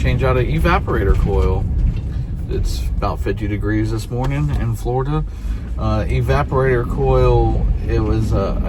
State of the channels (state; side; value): identical; both; correlation 1.00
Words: out an evaporator coil. It's about 50 degrees this morning in Florida. Evaporator coil, it was